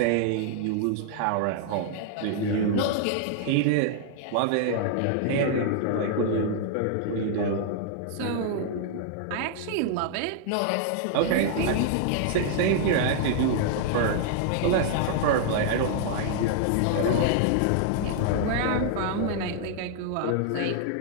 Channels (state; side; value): different; both; correlation -0.01